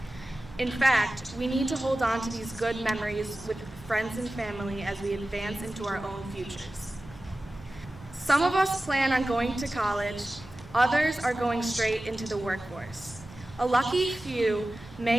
In fact, we need to hold on to these good memories with friends and family as we advance into our own futures. Some of us plan on going to college, others are going straight into the workforce. A lucky few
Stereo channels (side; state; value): right; noise; hum, 21 dB below the sound